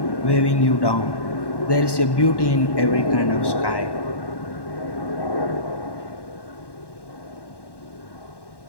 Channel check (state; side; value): late; right; 1.1 ms